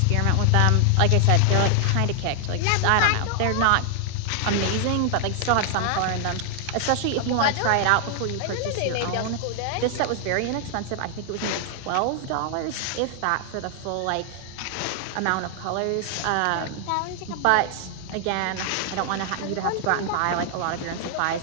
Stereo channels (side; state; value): both; different; correlation 0.00